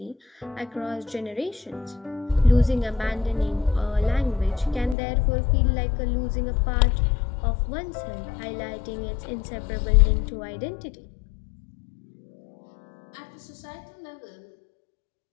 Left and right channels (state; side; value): drops out; right; at 5.0 s